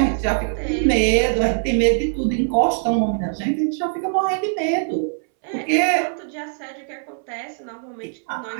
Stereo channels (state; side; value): silent; left; 64 dB below the other